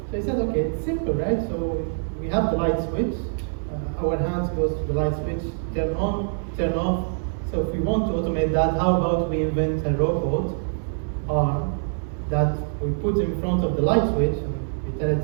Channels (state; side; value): silent; left; digital silence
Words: So I said, okay, it's simple, right? So we have the light switch, our hands goes to the light switch, turn on, turn off. So if we want to automate that, how about we invent a robot arm that we put in front of the light switch, and we tell it